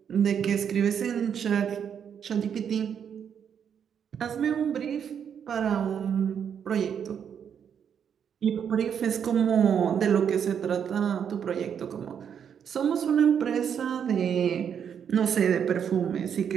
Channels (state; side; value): quieter; left; 8.0 dB